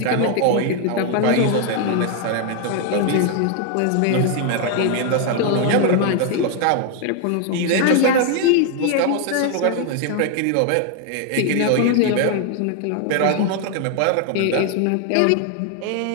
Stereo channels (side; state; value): both; different; correlation 0.00